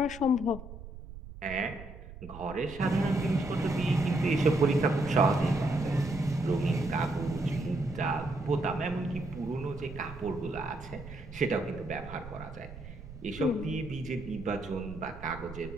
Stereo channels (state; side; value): noise; right; rumble, 14 dB below the sound